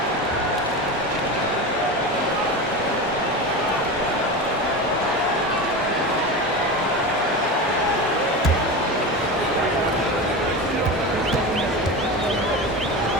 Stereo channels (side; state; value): both; normal; correlation 0.25